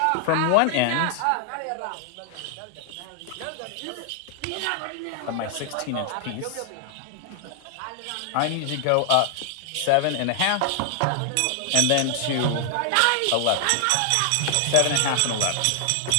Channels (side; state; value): both; different; correlation 0.00